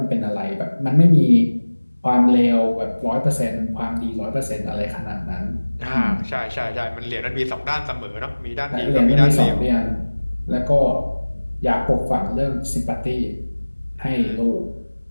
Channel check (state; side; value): inverted; both; correlation -1.00